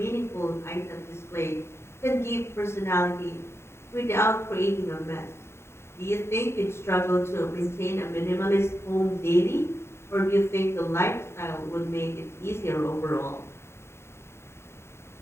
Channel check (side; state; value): right; late; 0.12 ms